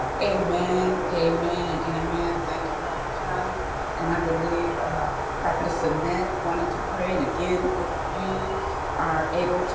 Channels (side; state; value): both; identical; correlation 1.00